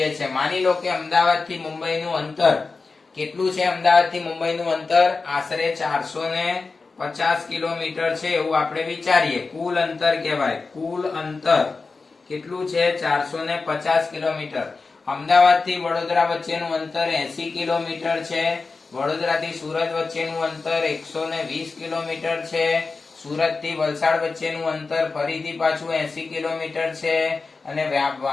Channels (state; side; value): quieter; right; 4.2 dB